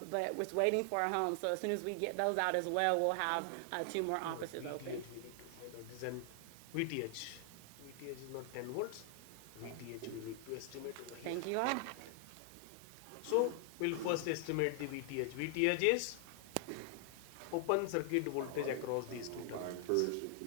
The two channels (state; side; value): different; both; correlation 0.00